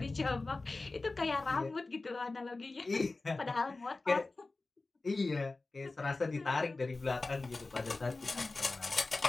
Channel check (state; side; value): quieter; right; 3.4 dB